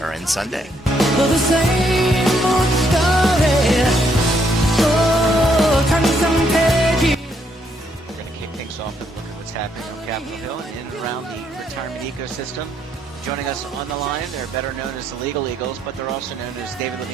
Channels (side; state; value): both; normal; correlation 0.73